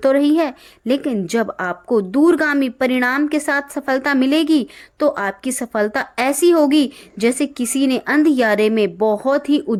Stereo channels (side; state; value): both; identical; correlation 1.00